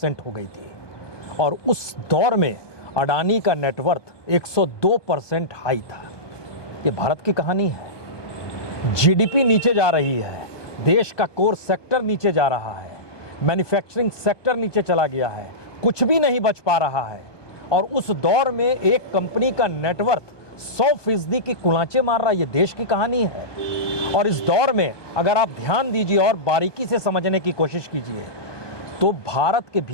हो गई थी और उस दौर में अडानी का नेटवर्थ 102% हाई था। ये भारत की कहानी है। जीडीपी नीचे जा रही है, देश का कोर सेक्टर नीचे जा रहा है, मैन्युफैक्चरिंग सेक्टर नीचे चला गया है, कुछ भी नहीं बच पा रहा है, और उस दौर में एक कंपनी का नेटवर्थ 100% की कुलांचे मार रहा है। ये देश की कहानी है। और इस दौर में अगर आप ध्यान दीजिए और बारीकी से समझने की कोशिश कीजिए, तो भारत के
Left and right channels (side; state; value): right; late; 1.2 ms